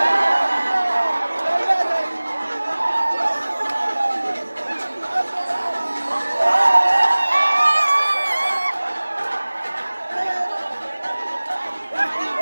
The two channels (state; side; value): inverted; both; correlation -1.00